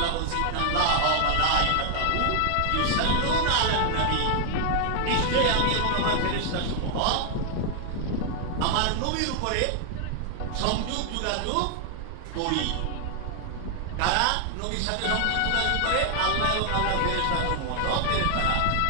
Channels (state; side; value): different; both; correlation 0.00